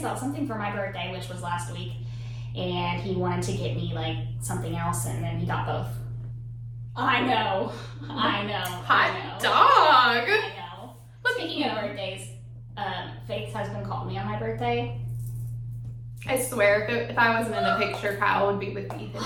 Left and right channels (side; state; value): both; identical; correlation 1.00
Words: something for my birthday, which was last week, and he wanted to get me like something else, and then he got both. I know. Hot dog. I know. Speaking of birthdays, Faith's husband called me on my birthday. I swear, if I wasn't in the picture, Kyle would be with Ethan